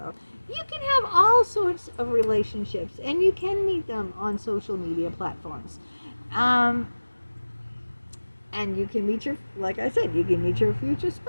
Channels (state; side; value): inverted; both; correlation -1.00